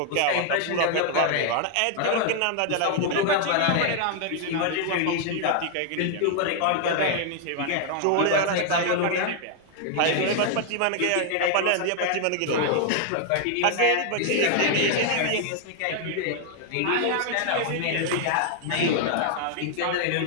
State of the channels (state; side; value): different; both; correlation 0.00